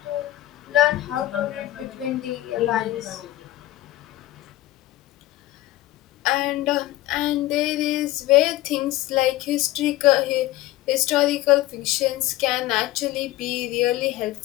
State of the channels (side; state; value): right; quieter; 16.1 dB